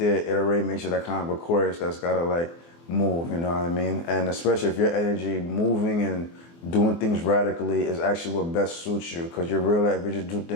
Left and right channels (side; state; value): right; late; 24 ms